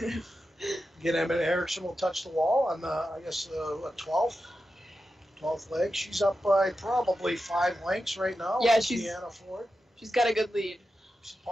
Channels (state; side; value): normal; both; correlation 0.90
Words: Again, Emma Erickson will touch the wall on the, I guess, 12th leg. She's up by probably 5 lengths right now. Yeah, with she's- Kiana Ford. She's got a good lead. She's a